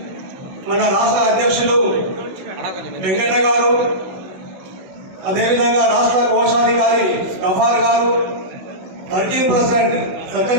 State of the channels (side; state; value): left; late; 16 ms